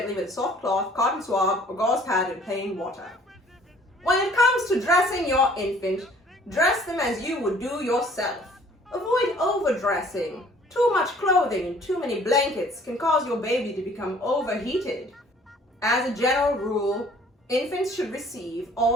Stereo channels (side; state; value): both; normal; correlation 0.55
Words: with a soft cloth, cotton swab, or gauze pad in plain water. When it comes to dressing your infant, dress them as you would do yourself. Avoid overdressing. Too much clothing and too many blankets can cause your baby to become overheated. As a general rule, infants should receive